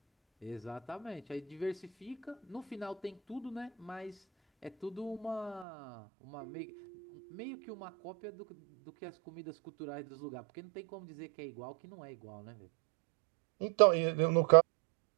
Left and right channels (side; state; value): left; drops out; at 5.7 s